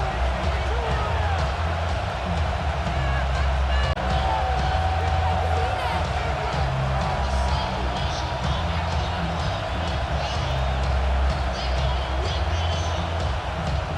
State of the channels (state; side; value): identical; both; correlation 1.00